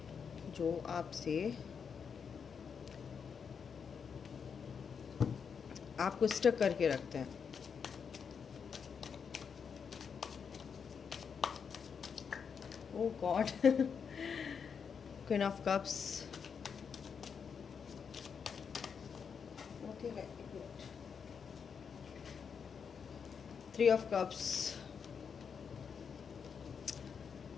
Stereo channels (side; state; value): right; quieter; 6.5 dB